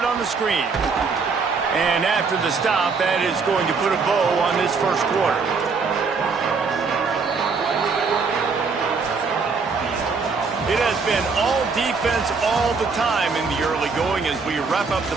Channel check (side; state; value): left; quieter; 4.8 dB